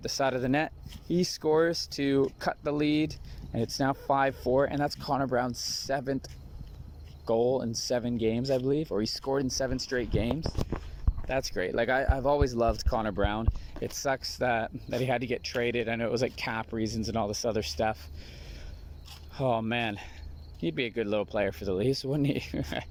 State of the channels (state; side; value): identical; both; correlation 1.00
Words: side of the net. He scores to cut the lead, and it's now 5-4, and that's Connor Brown's 7th goal in 7 games, I believe, or he scored in 7 straight games. That's great. Like, I've always loved Connor Brown. It sucks that he had to get traded. I know it was like cap reasons and all this other stuff. Oh man, he'd be a good little player for the Leafs, wouldn't he?